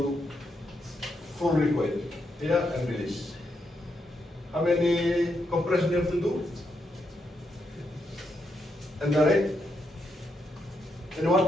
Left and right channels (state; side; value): normal; both; correlation 0.81